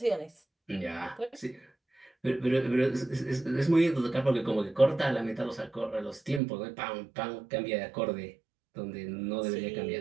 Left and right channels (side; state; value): left; drops out; at 6.4 s